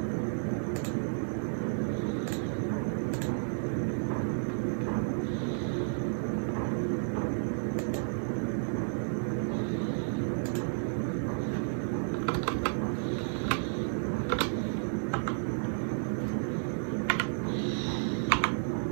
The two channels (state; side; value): silent; left; digital silence